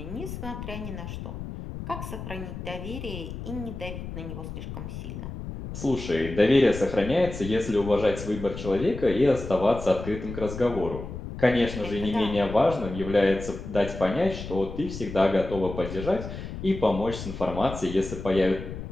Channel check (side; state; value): left; noise; rumble, 9 dB below the sound